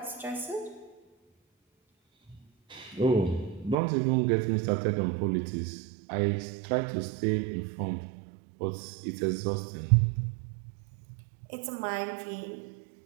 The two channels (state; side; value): drops out; left; at 3.8 s